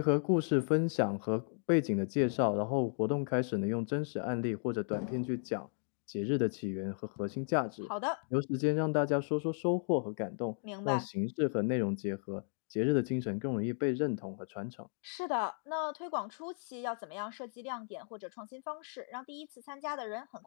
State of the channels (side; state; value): right; silent; 54 dB below the other